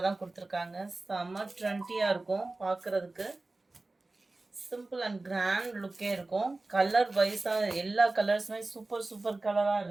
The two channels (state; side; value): quieter; left; 3.1 dB